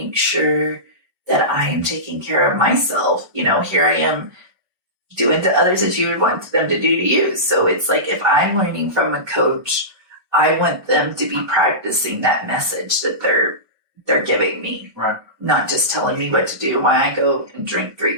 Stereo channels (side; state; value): left; late; 1.2 ms